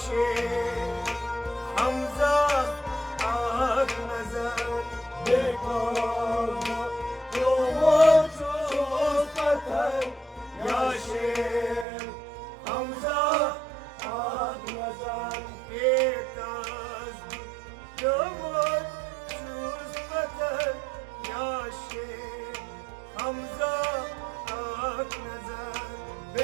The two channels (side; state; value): left; drops out; at 11.9 s